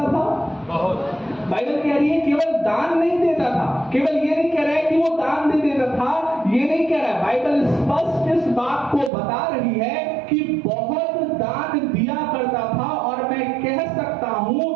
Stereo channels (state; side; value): drops out; left; at 9.1 s